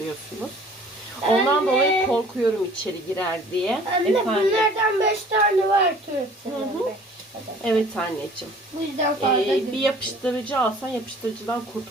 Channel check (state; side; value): normal; both; correlation 0.50